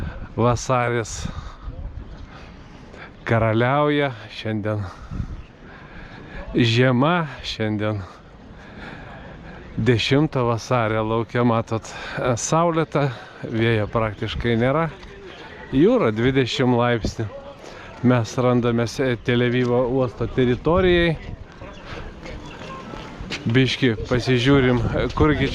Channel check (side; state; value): both; identical; correlation 1.00